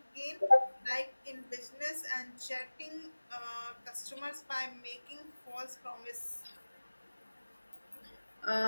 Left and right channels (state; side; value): inverted; both; correlation -1.00